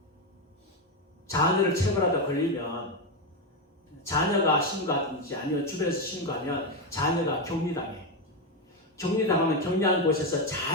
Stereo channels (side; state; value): both; normal; correlation 0.10